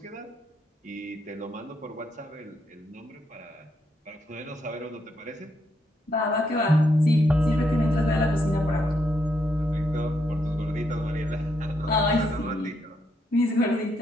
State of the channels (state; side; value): normal; both; correlation 0.78